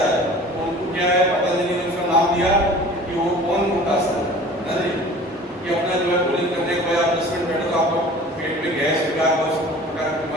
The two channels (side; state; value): both; normal; correlation 0.44